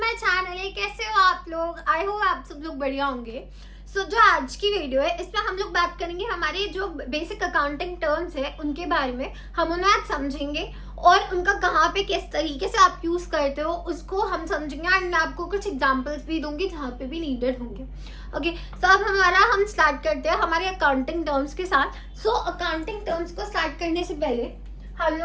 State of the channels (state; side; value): identical; both; correlation 1.00